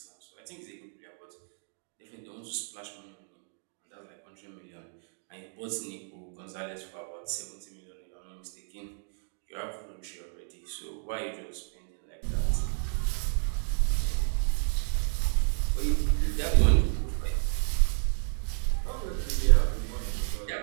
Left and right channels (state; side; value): silent; left; 57 dB below the other